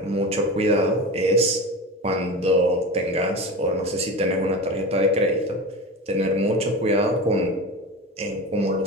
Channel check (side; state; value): both; normal; correlation 0.28